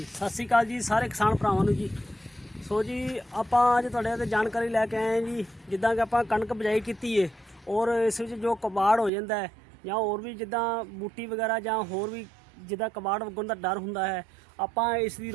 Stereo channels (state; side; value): drops out; left; at 9.1 s